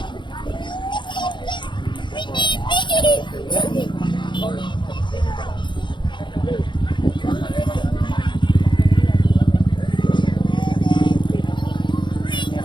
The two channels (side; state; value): right; late; 0.23 ms